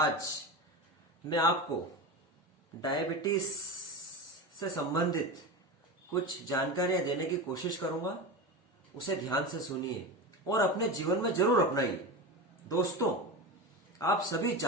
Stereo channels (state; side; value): normal; both; correlation 0.23